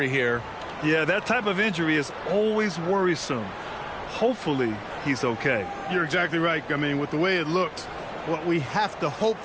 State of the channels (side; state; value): both; identical; correlation 1.00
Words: here. Yeah, that type of injury is always worrisome. Hopefully, he's okay. You're exactly right. I mean, with the way it looks, what we have to hope